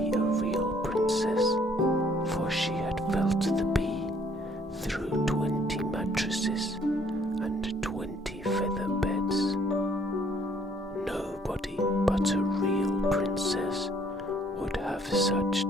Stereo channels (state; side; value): normal; both; correlation 0.63